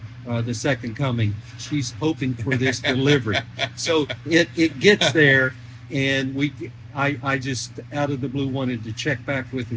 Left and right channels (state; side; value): identical; both; correlation 1.00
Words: the second coming. She's hoping for this delivery. So it gets there, and I just out of the blue wanted to check back with her